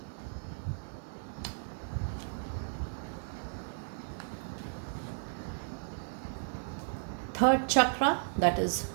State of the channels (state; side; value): silent; left; digital silence